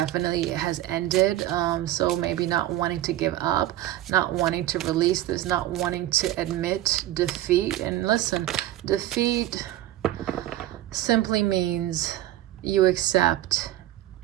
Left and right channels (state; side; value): quieter; left; 14.4 dB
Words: has ended. So maybe not wanting to give up, not wanting to release this, not wanting to admit defeat. And listen, defeat simply means you accept.